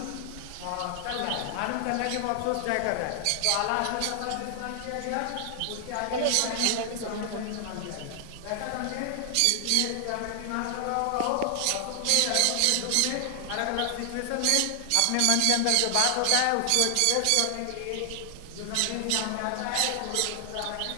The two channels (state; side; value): different; both; correlation 0.00